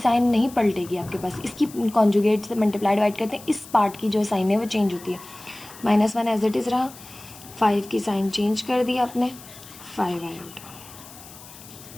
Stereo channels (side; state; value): left; noise; hiss, 18 dB below the sound